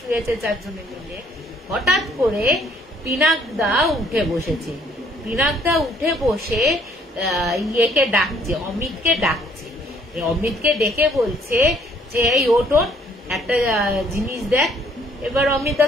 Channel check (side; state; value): both; normal; correlation 0.63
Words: চারজনে মিলে। হঠাৎ করে পিনাকদা উঠে বসেছে, পিনাকদা উঠে বসে ইয়েকে ডাকছে, অমিতকে ডাকছে। অমিতকে ডেকে বলছে যে এই ওঠ, একটা জিনিস দেখ। এবার অমিতা